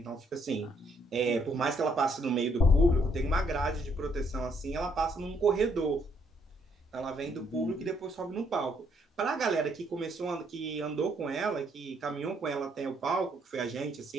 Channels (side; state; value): both; normal; correlation 0.71